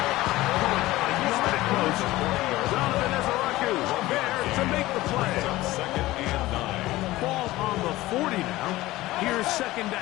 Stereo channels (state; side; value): quieter; right; 17.7 dB